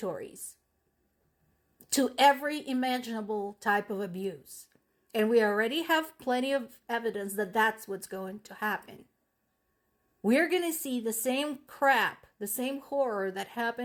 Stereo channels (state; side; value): identical; both; correlation 1.00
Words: to every imaginable type of abuse. And we already have plenty of evidence that that's what's going to happen. We're going to see the same crap, the same horror that